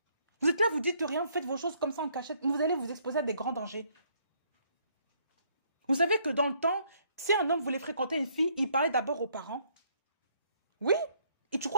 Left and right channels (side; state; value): both; inverted; correlation -0.67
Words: Vous êtes là, vous dites rien, vous faites vos choses comme ça en cachette. Vous allez vous exposer à des grands dangers. Vous savez que dans le temps, si un homme voulait fréquenter une fille, il parlait d'abord aux parents. Oui. Et tu